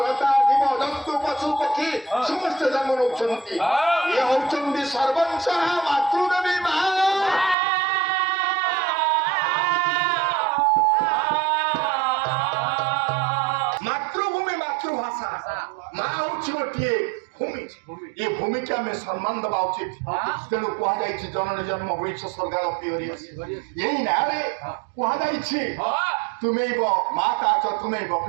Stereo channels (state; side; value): drops out; left; at 7.6 s